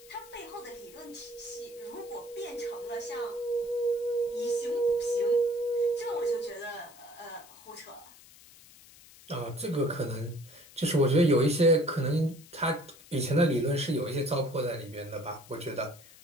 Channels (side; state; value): left; noise; hiss, 22 dB below the sound